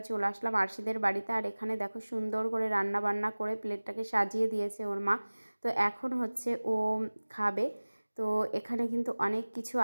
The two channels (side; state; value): both; inverted; correlation -1.00